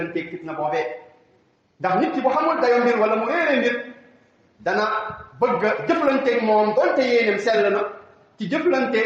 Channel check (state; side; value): identical; both; correlation 1.00